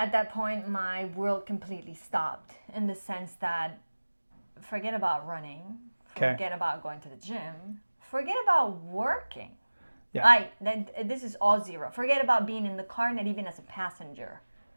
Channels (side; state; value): both; inverted; correlation -1.00